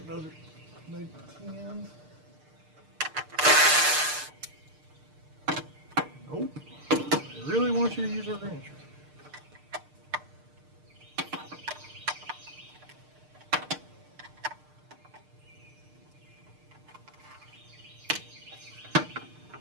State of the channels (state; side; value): late; left; 6.6 ms